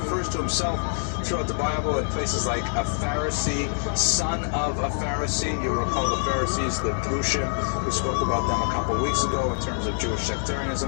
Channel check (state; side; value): silent; right; digital silence